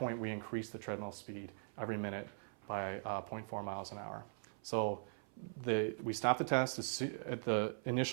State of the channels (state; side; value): silent; left; 50 dB below the other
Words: we increase the treadmill speed every minute by 0.4 miles an hour. So we stop the test at the